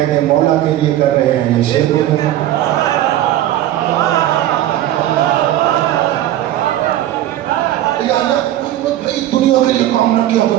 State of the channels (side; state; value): left; quieter; 13.2 dB